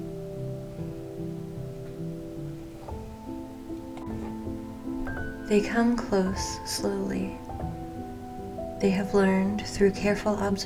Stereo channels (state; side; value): identical; both; correlation 1.00